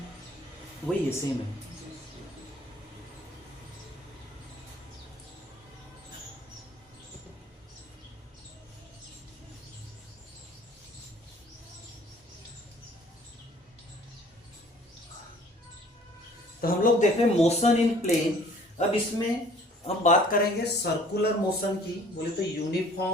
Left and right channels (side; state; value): both; normal; correlation 0.53